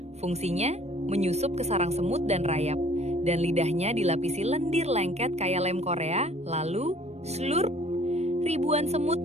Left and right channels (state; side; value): late; left; 0.31 ms